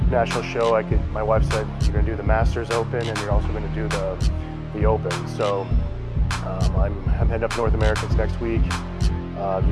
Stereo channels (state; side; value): identical; both; correlation 1.00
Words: national show, my wife said, you're going to do the Masters Open and you're also going to do the Open. So I'm heading up North Americans next week,